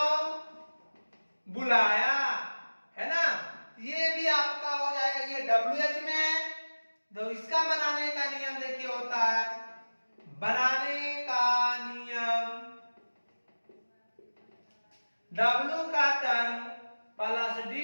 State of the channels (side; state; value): both; inverted; correlation -1.00